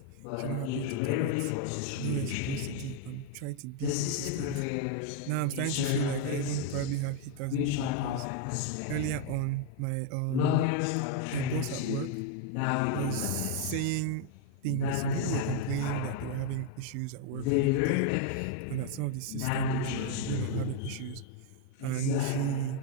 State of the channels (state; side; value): different; both; correlation 0.01